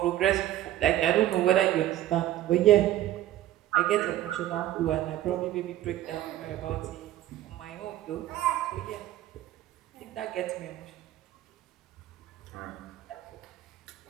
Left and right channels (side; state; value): left; quieter; 13.6 dB